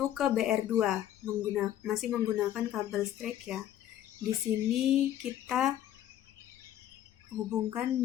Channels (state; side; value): quieter; right; 11.8 dB